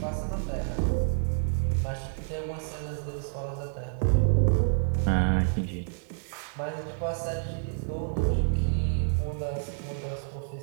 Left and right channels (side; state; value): left; silent; 59 dB below the other